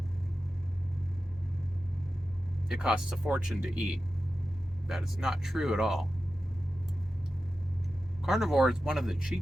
it costs a fortune to eat. That is not true at all. Carnivore is one of the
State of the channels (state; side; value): normal; both; correlation 0.93